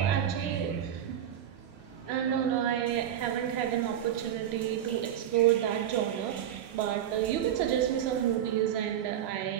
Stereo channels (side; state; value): left; quieter; 10.3 dB